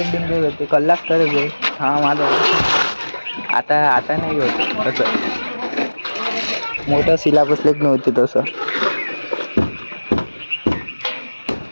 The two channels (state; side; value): inverted; both; correlation -1.00